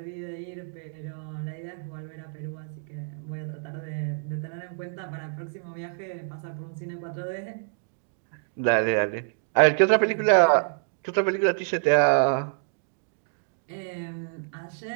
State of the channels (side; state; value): left; silent; digital silence